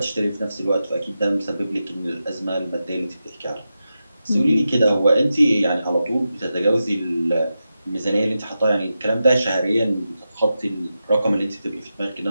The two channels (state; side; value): inverted; both; correlation -0.90